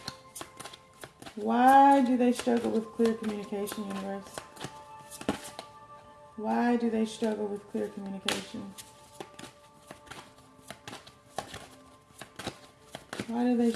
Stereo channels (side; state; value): both; identical; correlation 1.00